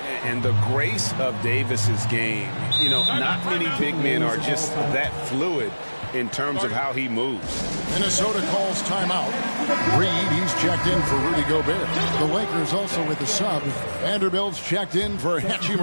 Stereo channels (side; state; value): both; inverted; correlation -1.00